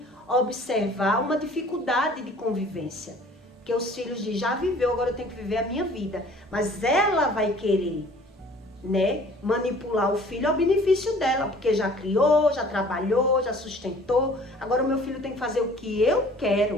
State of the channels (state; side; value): normal; both; correlation 0.51